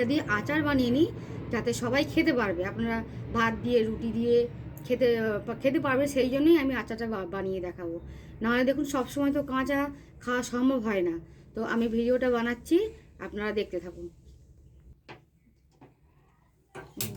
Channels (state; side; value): identical; both; correlation 1.00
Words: দিয়ে আচার বানিয়ে নিই, যাতে সবাই খেতে পারবে। আপনারা ভাত দিয়ে, রুটি দিয়ে খেতে খেতে পারবে, সেই জন্যই আমি আচারটা বানিয়ে দেখাবো। নাহলে দেখুন, সবসময় তো কাঁচা খাওয়া সম্ভব হয় না। তো আমি ভিডিওটা বানাচ্ছি, আপনারা দেখতে থাকুন।